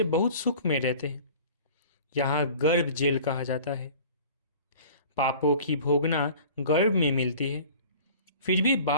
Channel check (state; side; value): inverted; both; correlation -0.44